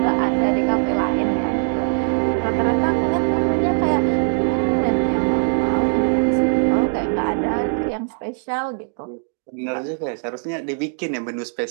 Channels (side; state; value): left; silent; digital silence